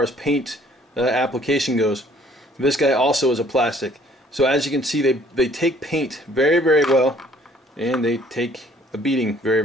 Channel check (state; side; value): normal; both; correlation 0.59